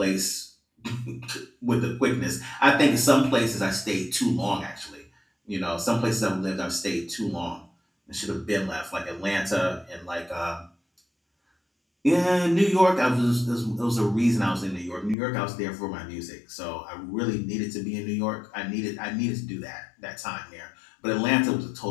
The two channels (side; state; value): right; drops out; at 15.2 s